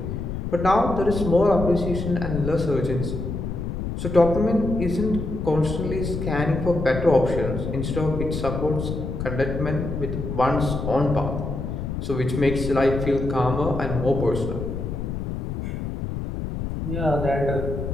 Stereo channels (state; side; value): noise; left; rumble, 4 dB below the sound